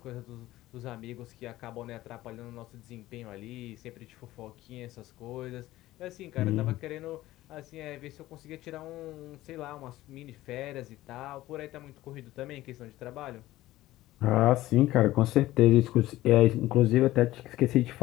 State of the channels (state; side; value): quieter; right; 16.2 dB